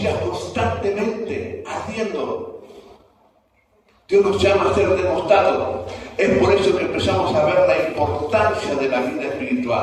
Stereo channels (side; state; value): both; identical; correlation 1.00